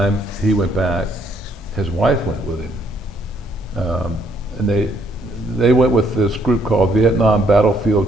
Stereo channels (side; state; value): both; normal; correlation 0.69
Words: he went back, his wife went with him. And they went with this group called Vietnam